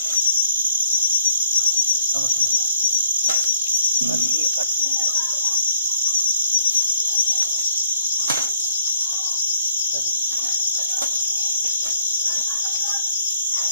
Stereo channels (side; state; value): both; inverted; correlation -0.63